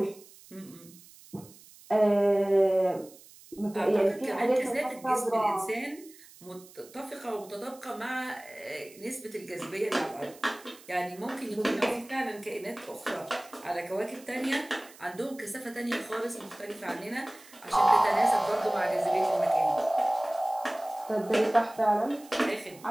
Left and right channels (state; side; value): noise; right; hiss, 22 dB below the sound